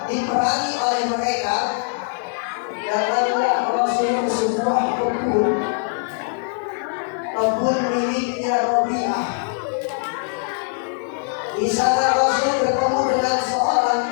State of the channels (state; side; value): silent; right; 58 dB below the other